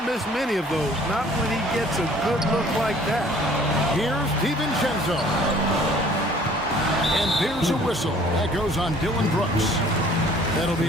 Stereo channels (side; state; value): both; normal; correlation 0.54